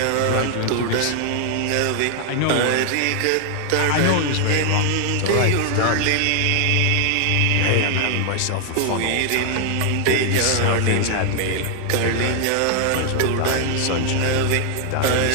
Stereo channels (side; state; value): both; different; correlation 0.00